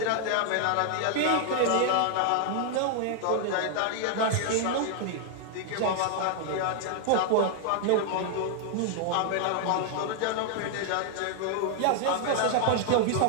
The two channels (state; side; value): different; both; correlation -0.01